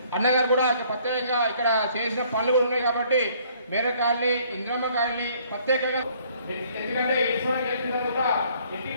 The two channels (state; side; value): inverted; both; correlation -0.61